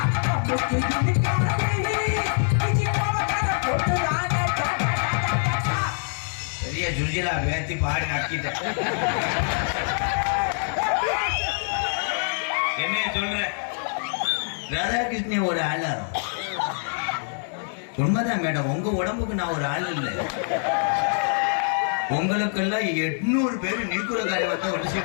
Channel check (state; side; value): silent; right; 62 dB below the other